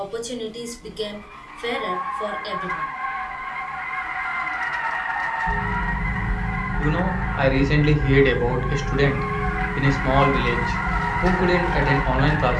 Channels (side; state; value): both; identical; correlation 1.00